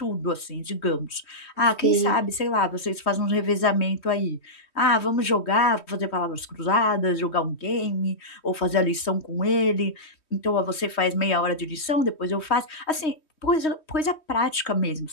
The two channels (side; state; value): right; late; 3.2 ms